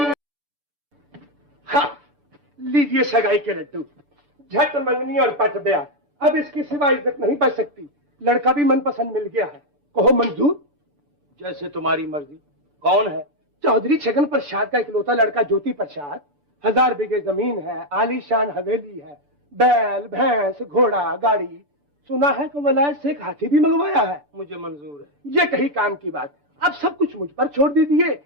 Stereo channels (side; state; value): left; late; 6.9 ms